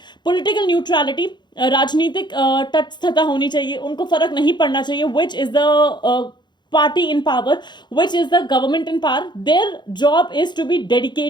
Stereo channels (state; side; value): late; right; 0.21 ms